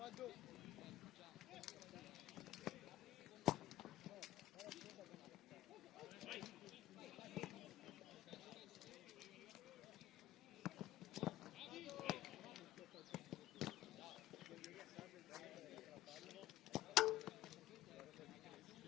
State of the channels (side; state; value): right; quieter; 14.6 dB